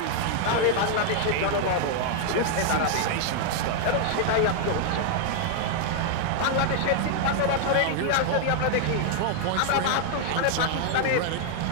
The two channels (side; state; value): both; different; correlation -0.01